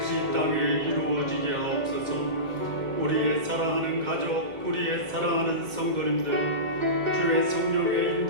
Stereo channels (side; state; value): left; late; 2.1 ms